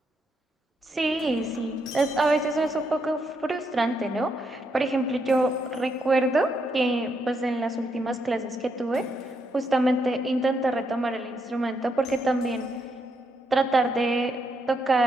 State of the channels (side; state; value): both; normal; correlation 0.78